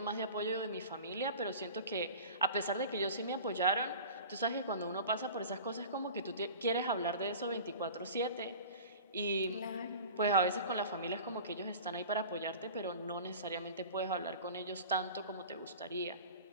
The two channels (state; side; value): inverted; both; correlation -0.38